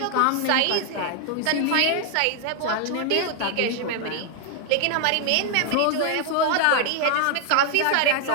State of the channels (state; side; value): different; both; correlation 0.00